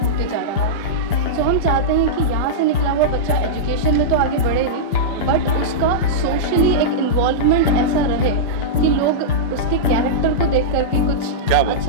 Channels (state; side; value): late; right; 5.1 ms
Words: होते जा रहा है। तो हम चाहते हैं कि यहाँ से निकला हुआ बच्चा एजुकेशन में तो आगे बढ़े ही, बट उसका सोशली एक इन्वॉल्वमेंट ऐसा रहे कि लोग उसके कैरेक्टर को देख करके कुछ